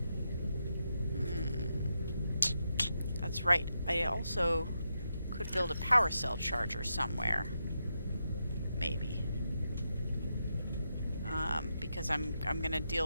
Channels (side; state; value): both; inverted; correlation -0.85